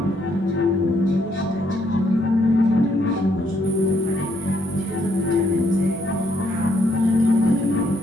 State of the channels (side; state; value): both; normal; correlation 0.72